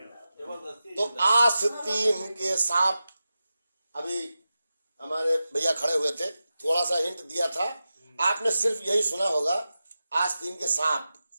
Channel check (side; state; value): both; inverted; correlation -0.93